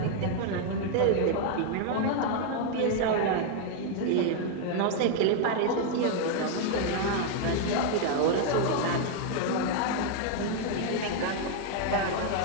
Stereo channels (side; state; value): both; different; correlation 0.00